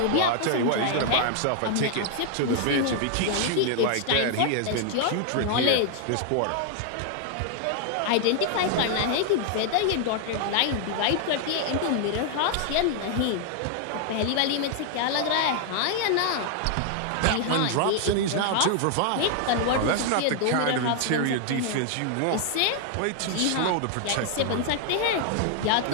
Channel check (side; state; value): both; different; correlation 0.00